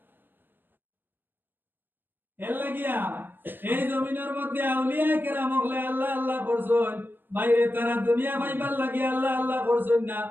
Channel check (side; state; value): left; late; 0.096 ms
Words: এর লাগিয়া এই জমিনের মধ্যে আউলিয়া কেরাম হলে আল্লাহ আল্লাহ করছেন বাইরে তারা দুনিয়া পাইবার লাগি আল্লাহ আল্লাহ করছেন না